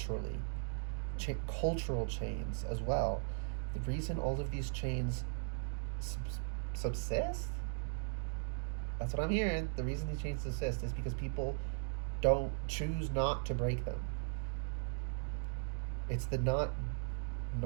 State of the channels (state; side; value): silent; left; digital silence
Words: Cultural chains as well. The reason all of these chains subsist, that's what I'm hearing. The reason these chains subsist is because people don't choose not to break them. It's the not